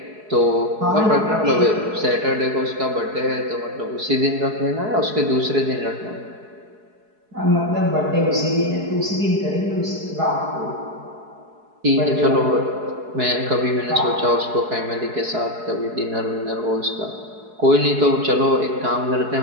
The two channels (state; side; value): late; left; 4.7 ms